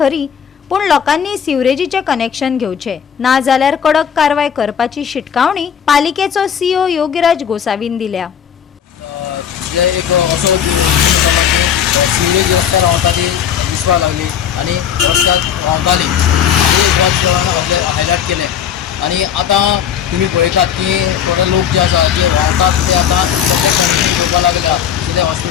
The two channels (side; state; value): right; quieter; 8.5 dB